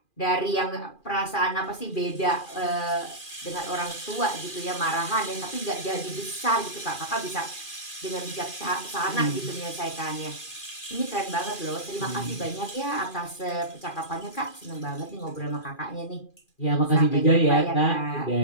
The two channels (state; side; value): late; right; 2.4 ms